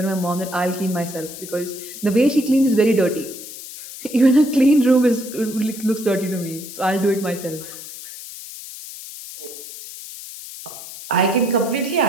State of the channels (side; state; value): left; noise; hiss, 13 dB below the sound